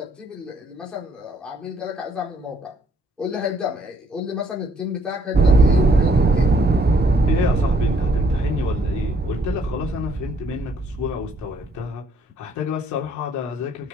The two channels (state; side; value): normal; both; correlation 0.66